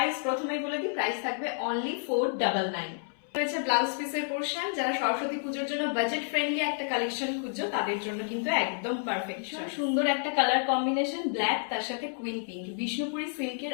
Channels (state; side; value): silent; right; 58 dB below the other